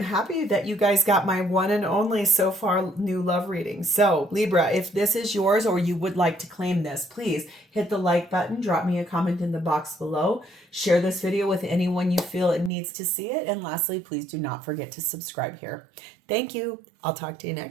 happy that you guys got my one and only so far new love reading. So Libra, if this is yours or you would like to claim this, please hit the like button, drop me a comment in the box below, share this video with anyone you feel it needs to see it. And lastly, please do not forget to subscribe here. Thank you. I'll talk to you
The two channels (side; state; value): left; drops out; at 12.7 s